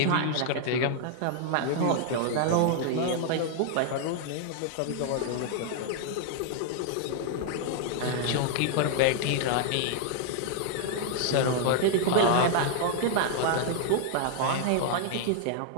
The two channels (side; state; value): both; different; correlation -0.01